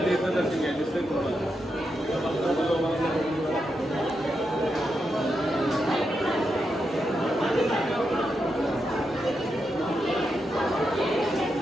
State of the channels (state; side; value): normal; both; correlation 0.85